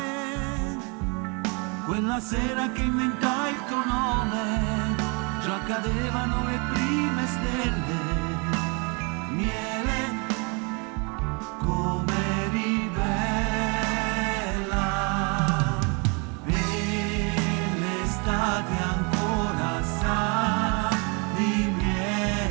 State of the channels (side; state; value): left; quieter; 32.8 dB